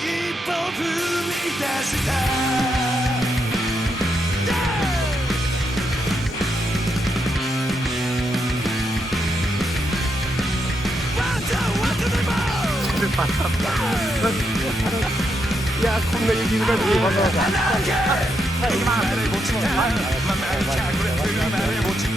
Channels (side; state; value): both; normal; correlation 0.81